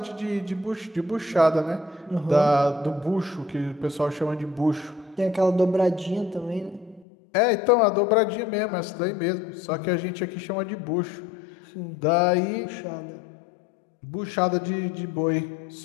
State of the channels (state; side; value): drops out; right; at 7.1 s